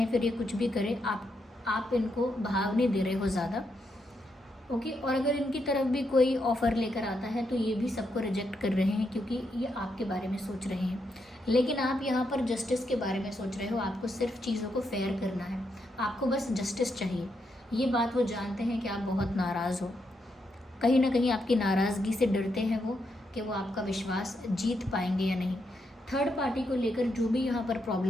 फिर ये कुछ भी करें, आप इनको भाव नहीं दे रहे हो ज़्यादा, ओके। और अगर इनकी तरफ भी कोई ऑफ़र लेकर आता है तो ये भी सबको रिजेक्ट कर रहे हैं, क्योंकि ये आपके बारे में सोच रहे हैं। लेकिन आप यहाँ पर जस्टिस के बारे में सोच रहे हो, आपको सिर्फ चीज़ों को फेयर करना है, आपको बस जस्टिस चाहिए। ये बात वो जानते हैं कि आप बहुत नाराज़ हो, कहीं ना कहीं आपकी नाराज़गी से डरते हैं वो कि वो आपका विश्वास जीत पाएंगे या नहीं। थर्ड पार्टी को लेकर जो भी यहाँ पर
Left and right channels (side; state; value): both; normal; correlation 0.81